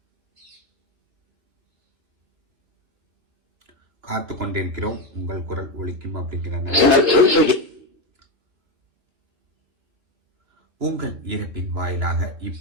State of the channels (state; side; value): late; left; 2.9 ms